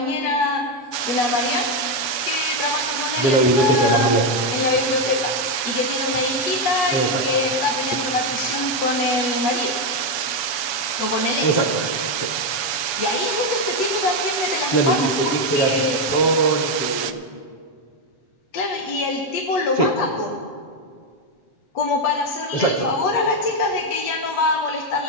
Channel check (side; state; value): right; late; 7.1 ms